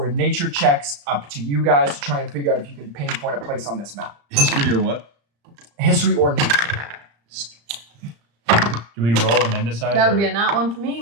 nature checks, up to you guys, to try and figure out if you can pinpoint a place on this map. History or what? History or nature. Do we roll and then decide? That would or- be a nat one for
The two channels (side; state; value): left; late; 35 ms